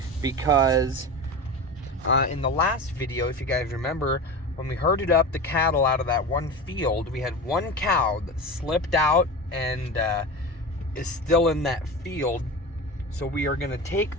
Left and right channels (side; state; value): both; normal; correlation 0.28